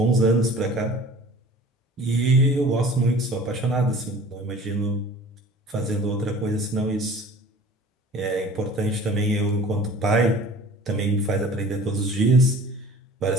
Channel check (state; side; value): normal; both; correlation 0.45